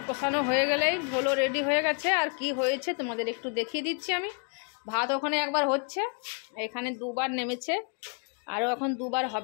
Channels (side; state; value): right; quieter; 39.9 dB